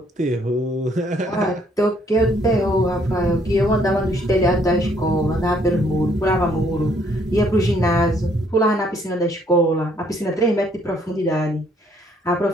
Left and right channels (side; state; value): both; normal; correlation 0.66